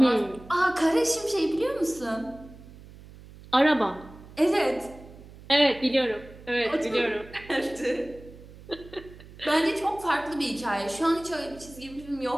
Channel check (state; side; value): noise; right; hum, 19 dB below the sound